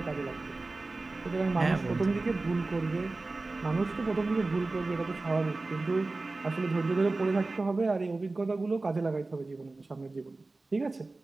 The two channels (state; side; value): quieter; left; 3.3 dB